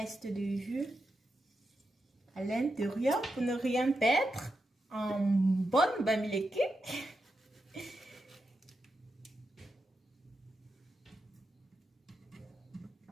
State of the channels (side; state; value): both; normal; correlation 0.87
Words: du jus à l'intérieur pour ne rien perdre en bonne bamileke.